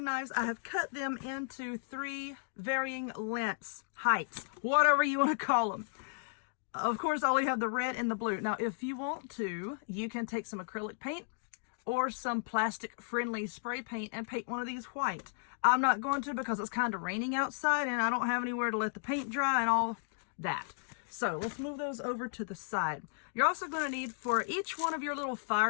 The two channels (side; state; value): right; silent; digital silence